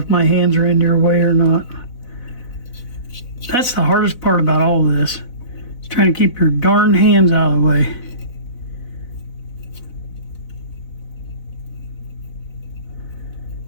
my hands are in your way or not. That's the hardest part about all of this. Is trying to keep your darn hands out of the way.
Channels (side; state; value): right; late; 4.0 ms